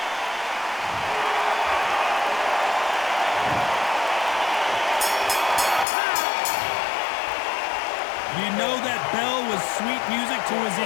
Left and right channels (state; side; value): drops out; right; at 5.9 s